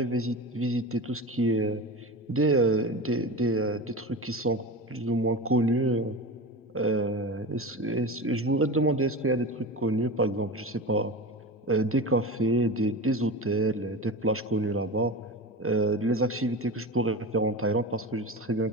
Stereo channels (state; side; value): normal; both; correlation 0.27